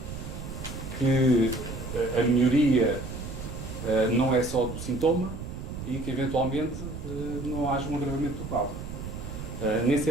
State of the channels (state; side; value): noise; right; rumble, 8 dB below the sound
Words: que a melhoria não é só do sintoma e que, eventualmente, não haja um agravamento do quadro. Nem